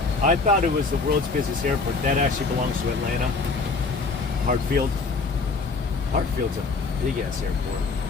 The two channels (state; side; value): quieter; right; 4.1 dB